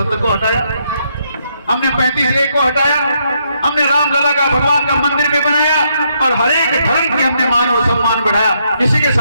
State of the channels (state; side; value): inverted; both; correlation -0.76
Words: को हटाया, हमने 35A को हटाया, हमने रामलला का भगवान का मंदिर भी बनाया, और हर एक धर्म के हमने मान और सम्मान बढ़ाया। किसी के